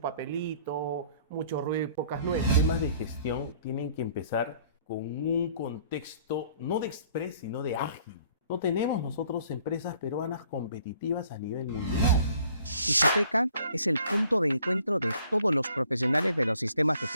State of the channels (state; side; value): inverted; both; correlation -0.58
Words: mucho ruido y pocas nueces. Temas de gestión tienen que empezar con un contexto no de express, sino de ágil. No tenemos nosotros empresas peruanas competitivas a nivel mundial. Isoteca es el punto de encuentro de todos los profesionales de los sistemas de